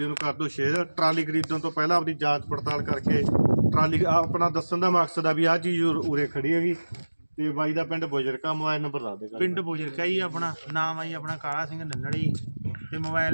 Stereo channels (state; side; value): inverted; both; correlation -1.00